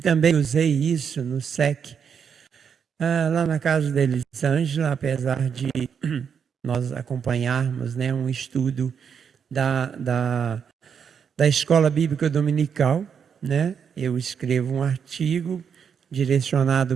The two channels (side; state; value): left; quieter; 7.1 dB